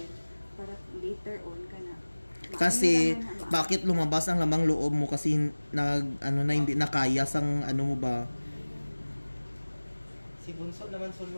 para later on ka na. Kasi, bakit lumabas ang lamang loob mo? Kasi, hindi nakaya sang ano mo ba? Si Bunso naman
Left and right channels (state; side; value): inverted; both; correlation -1.00